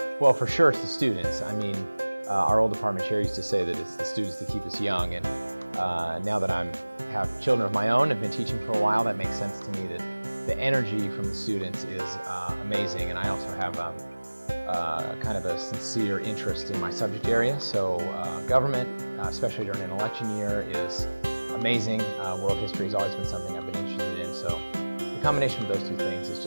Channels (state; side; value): inverted; both; correlation -1.00